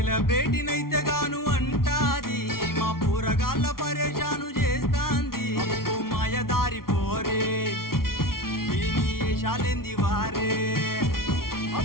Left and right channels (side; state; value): right; late; 0.93 ms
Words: గాను అంటాది, మా పూరగాళ్ళ పరేషాను చేస్తాంది. అబ్బో మాయదారి పోరే, దీని ఏషాలేంది వారే.